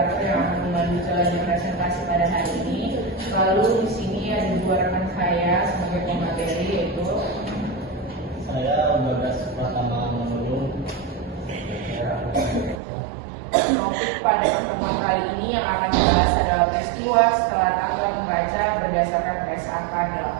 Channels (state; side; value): drops out; left; at 12.8 s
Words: yang akan memandu jalannya presentasi pada hari ini. Lalu di sini ada dua rekan saya sebagai pemateri, yaitu saya Bagas Pratama Manulung. Topik pada pertemuan kali ini yang akan dibahas adalah peristiwa setelah tanggal membaca berdasarkan PSAK